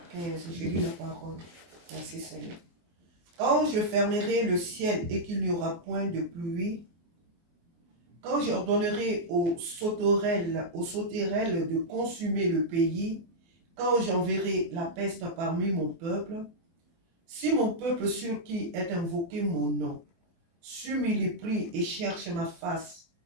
15. Je lis la parole. Merci Seigneur. Quand je fermerai le ciel et qu'il n'y aura point de pluie, quand j'ordonnerai aux sauterelles de consumer le pays, quand j'enverrai la peste parmi mon peuple, si mon peuple sur qui est invoqué mon nom, s'humilie et cherche ma face,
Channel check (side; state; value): left; late; 23 ms